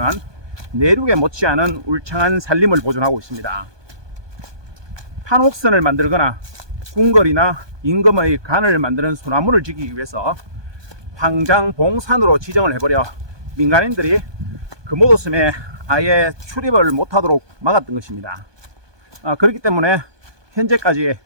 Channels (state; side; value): late; left; 1.2 ms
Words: 내륙에 못지않은 울창한 산림을 보존하고 있습니다. 판옥선을 만들거나 궁궐이나 임금의 관을 만드는 소나무를 지키기 위해서 황장봉산으로 지정을 해버려 민간인들이 금오도 섬에 아예 출입을 못하도록 막았던 것입니다. 그렇기 때문에 현재까지